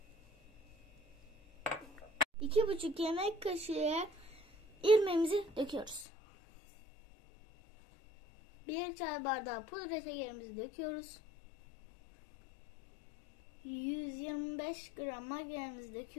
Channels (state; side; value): drops out; right; at 6.1 s